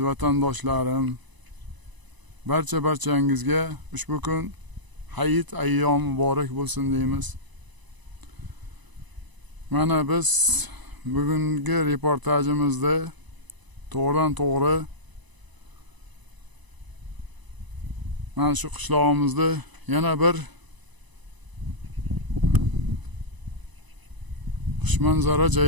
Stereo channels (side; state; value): left; late; 1.0 ms